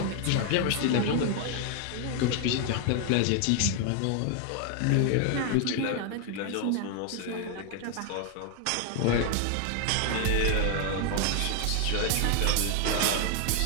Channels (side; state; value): both; different; correlation 0.00